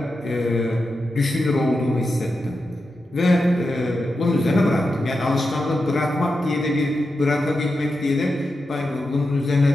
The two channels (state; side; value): normal; both; correlation 0.89